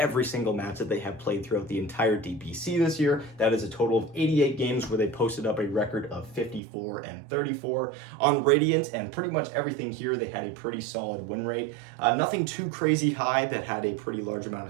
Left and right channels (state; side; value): drops out; left; at 6.6 s